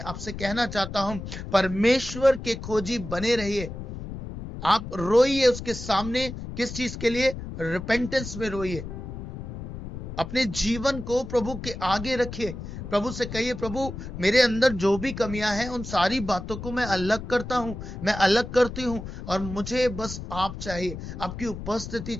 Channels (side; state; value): left; noise; rumble, 9 dB below the sound